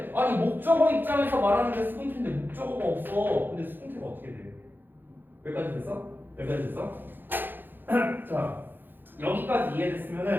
아니 목적어 입장에서 말하는데 수동태인데 목적어가 없어. 근데 수동태가 어떻게 돼? 여기까지 됐어? 여기까지 됐어? 자 여기까지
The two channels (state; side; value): late; left; 0.094 ms